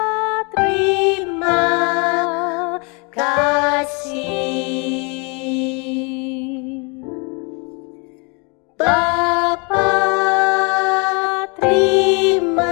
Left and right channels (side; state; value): right; quieter; 32.1 dB